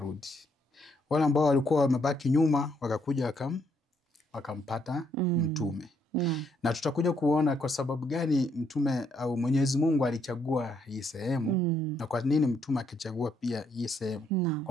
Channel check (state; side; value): normal; both; correlation 0.72